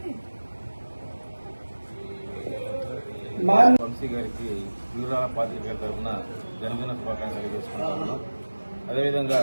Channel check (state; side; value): inverted; both; correlation -1.00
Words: వంశీ గారికి పిడుగురాళ్ల పాత్రికేయుల తరఫున జన్మదిన శుభాకాంక్షలు తెలియజేసుకుంటున్నాను. అదేవిధంగా